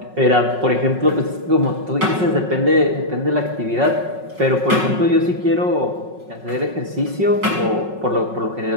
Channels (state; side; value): late; left; 5.4 ms